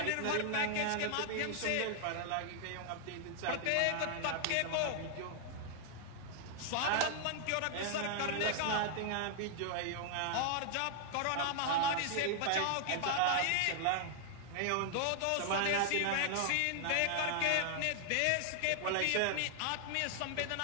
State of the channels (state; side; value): different; both; correlation 0.00